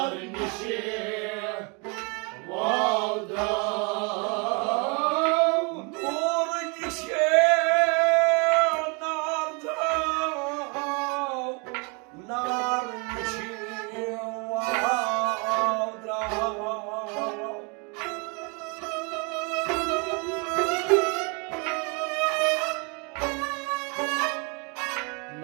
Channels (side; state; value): left; quieter; 32.4 dB